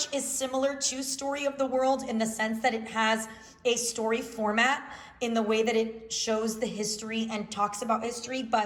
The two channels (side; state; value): both; identical; correlation 1.00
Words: is similar to Story of the World in the sense that it has a story format in the way that it shows the history and talks about history.